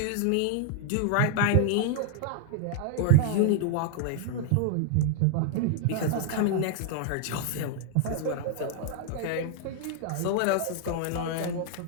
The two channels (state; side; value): different; both; correlation -0.01